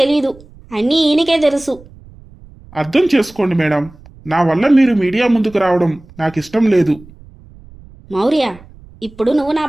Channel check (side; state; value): right; noise; rumble, 23 dB below the sound